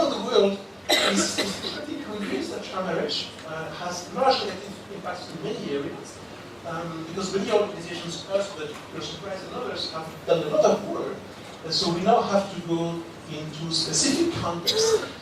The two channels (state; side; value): identical; both; correlation 1.00